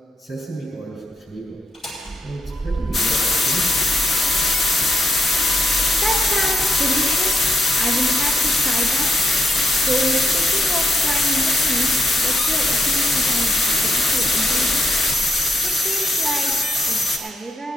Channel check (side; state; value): both; normal; correlation 0.80